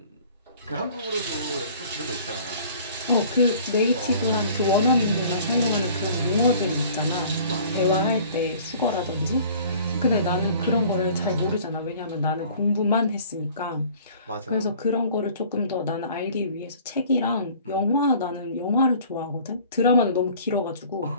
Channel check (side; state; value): both; inverted; correlation -0.50